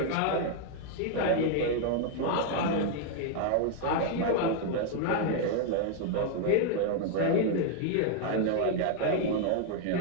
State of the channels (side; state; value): both; different; correlation 0.00